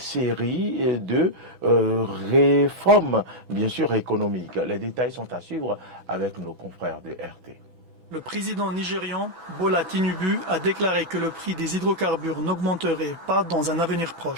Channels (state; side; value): late; left; 6.1 ms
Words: de réformes, bien sûr, économiques. Les détails sont à suivre avec nos confrères de RT. Le président nigérian, Bola Tinubu, a déclaré que le prix des hydrocarbures n'augmenterait pas dans un avenir